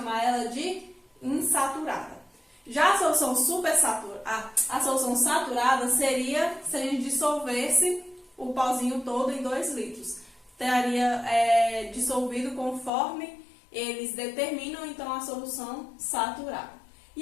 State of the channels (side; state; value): right; drops out; at 12.9 s